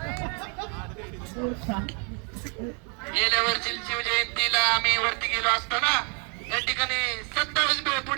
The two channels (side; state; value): left; quieter; 36.5 dB